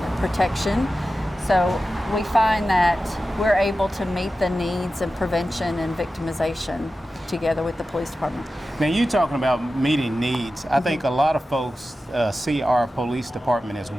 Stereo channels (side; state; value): both; normal; correlation 0.93